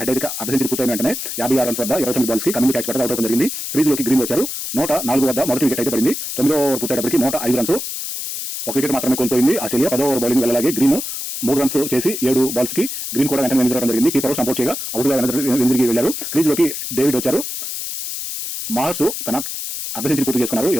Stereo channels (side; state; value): left; noise; hiss, 6 dB below the sound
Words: హెడ్ అయితే అర్ధ సెంచరీ పూర్తయిన వెంటనే 56 రన్స్ వద్ద 29 బాల్స్ కి కమింగ్ క్యాచ్ పట్టగా అవుట్ అవడం జరిగింది. క్రీజ్ లోకి గ్రీన్ వచ్చారు. 104 వద్ద మొదటి వికెట్ అయితే పడింది. 9 ఓవర్ పూర్తయ్యేటప్పటికి 105 రన్స్. ఒక వికెట్ మాత్రమే కోల్పోయింది ఆస్ట్రేలియా. 10 ఓవర్ బౌలింగ్ వెళ్ళలాగే గ్రీన్ 3 రన్స్ చేసి 7 బాల్స్ కి గ్రీన్ కూడా వెంటనే వెనుదిరగడం జరిగింది. కీపర్ సపోర్ట్ చేయగా అవుట్ గా వెనుదిరిగి వెళ్లారు. క్రీజ్ లోకి డేవిడ్ వచ్చారు. మార్ష్ తన అర్ధ సెంచరీ పూర్తి చేసుకున్నారు.